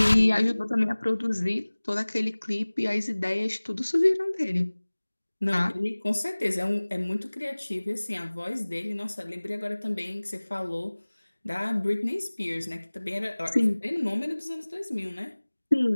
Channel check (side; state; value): both; inverted; correlation -1.00